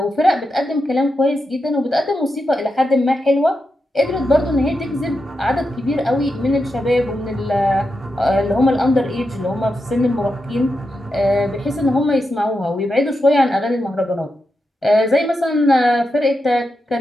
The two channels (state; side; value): normal; both; correlation 0.87